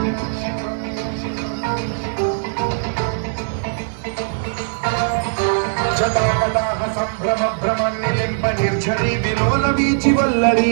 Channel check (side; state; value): left; silent; digital silence